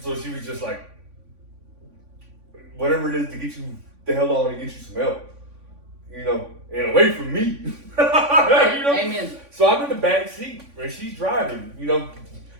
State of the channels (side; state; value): left; late; 3.5 ms